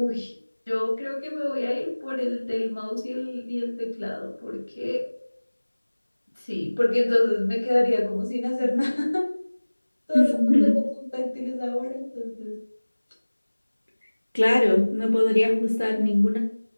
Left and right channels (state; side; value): inverted; both; correlation -1.00